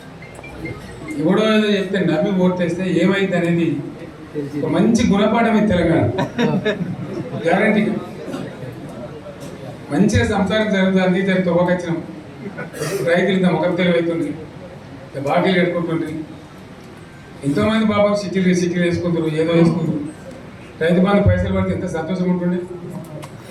ఎవడో ఏదో చెప్తే నమ్మి ఓటేస్తే ఏమైంది అనేది ఒక మంచి గుణపాఠం ఇది తెలంగాణ గ్యారంటీ. మంచిగా సంసారం జరుగుతుంది, తొవ్వకొచ్చినాం, రైతులు ఇంత ముఖం తెలివైతుంది, బాకీలు కట్టుకుంటుండ్రి. ఎంతోమంది పాపం సిటీలు వేసుకుంటారు, ఏదో వేసుకుంటారు. రైతు బంధు పైసలు పడితే ఎంత సంతోషం ఉంటుండే.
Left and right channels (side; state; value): both; identical; correlation 1.00